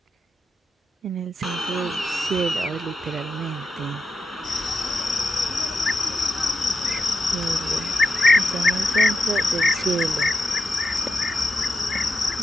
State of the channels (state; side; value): normal; both; correlation 0.86